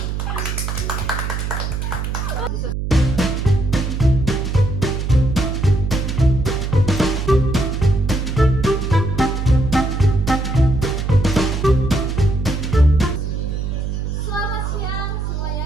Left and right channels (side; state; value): right; noise; hum, 3 dB below the sound